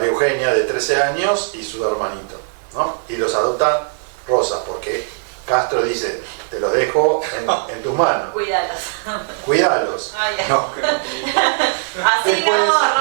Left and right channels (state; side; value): silent; left; 60 dB below the other